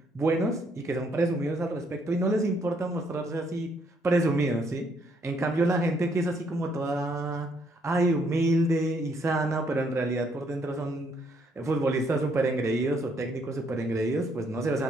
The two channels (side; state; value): both; normal; correlation 0.70